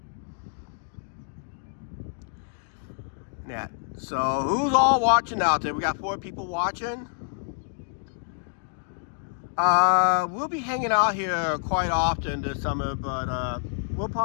Yeah. So who's all watching out there? We got 4 people watching. We'll be hanging out here quite often this summer, but we'll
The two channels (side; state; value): right; silent; digital silence